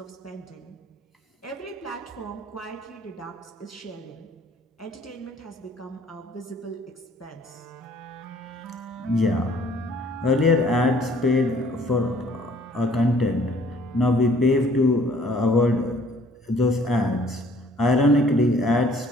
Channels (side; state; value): both; normal; correlation 0.58